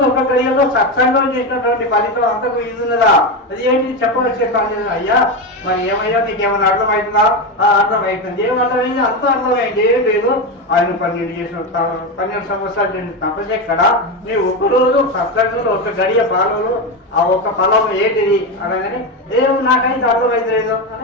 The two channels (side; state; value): both; normal; correlation 0.14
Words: ఒక గడియలో సత్సంగం చేసినటువంటి ఫలితం అంతకు ఇది ఉన్నదా? అది ఏంటి చెప్పవలసి కాలేదు. అయ్యా మరి ఏమయ్యా నీకేమైనా అర్థమవుతుందా? అర్థమవుతుంది. ఏం అర్థమైంది? అంత అర్థమైంది. ఏం లేదు, ఆయన 12 సంవత్సరాలు చేసిన తపస్సు ఎక్కడ? నేను ఒకరోజు సత్సంగంలో ఒక గడియ పాలలో ఆ ఒక ఫలం ఏంటిది అనగానే ఏమో నాకైతే అర్థమైంది లేదు